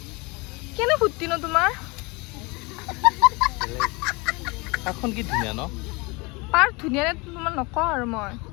কেনে ফুটি ন তোমাৰ পাৰ্কখন কি ধুনীয়া ন পাৰ্ক ধুনীয়া নে তোমাৰ নকওঁ আৰু মই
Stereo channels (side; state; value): right; quieter; 26.6 dB